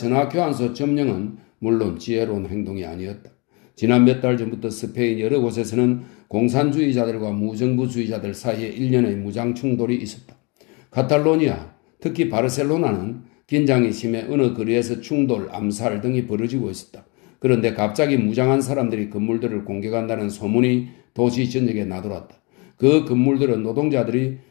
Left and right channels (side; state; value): right; quieter; 29.7 dB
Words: 점령은 물론 지혜로운 행동이 아니었다. 지난 몇 달 전부터 스페인 여러 곳에서는 공산주의자들과 무정부주의자들 사이에 일련의 무장 충돌이 있었다. 카탈로니아, 특히 바르셀로나는 긴장이 심해 어느 거리에서 충돌, 암살 등이 벌어지고 있었다. 그런데 갑자기 무장한 사람들이 건물들을 공격한다는 소문이 도시 전역에 나돌았다. 그 건물들은 노동자들이